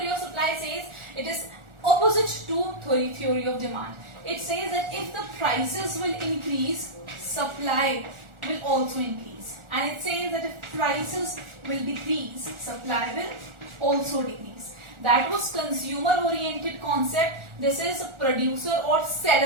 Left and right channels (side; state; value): left; late; 1.4 ms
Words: of supply says? It is opposite to theory of demand. It says that if the prices will increase, supply will also increase, and it says that if prices will decrease, supply will also decrease. That was consumer oriented concept. This is producer or